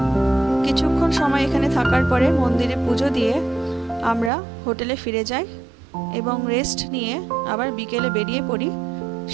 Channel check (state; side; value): drops out; left; at 4.3 s